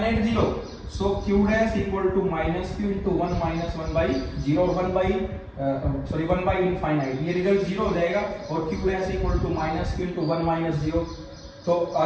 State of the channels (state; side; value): identical; both; correlation 1.00